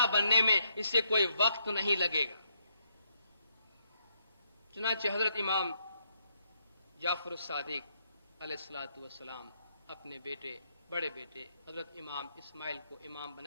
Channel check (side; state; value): both; inverted; correlation -0.75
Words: بننے میں اس سے کوئی وقت نہیں لگے گا۔ چنانچہ حضرت امام جعفر الصادق علیہ الصلوۃ والسلام اپنے بیٹے، بڑے بیٹے حضرت امام اسماعیل کو امام